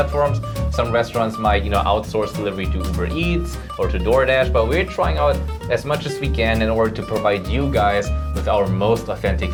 Some restaurants might, you know, outsource delivery to Uber Eats or to DoorDash, but we're trying out as much as we can in order to provide you guys with our most authentic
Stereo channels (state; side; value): identical; both; correlation 1.00